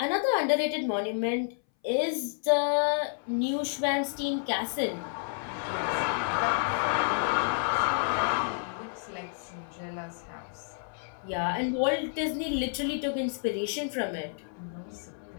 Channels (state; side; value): silent; right; 58 dB below the other